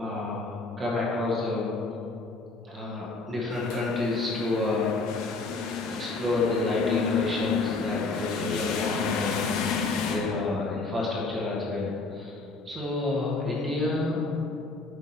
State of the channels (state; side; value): quieter; right; 3.5 dB